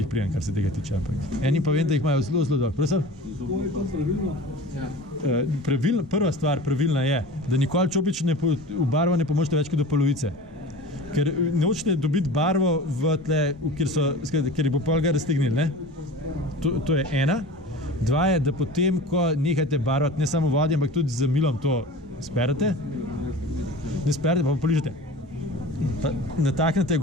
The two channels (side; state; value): both; normal; correlation 0.37